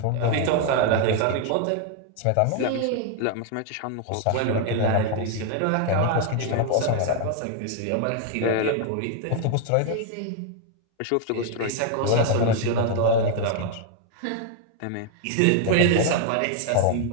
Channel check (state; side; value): different; both; correlation 0.00